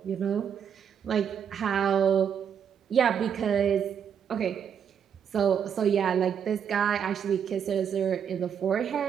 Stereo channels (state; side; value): quieter; left; 7.9 dB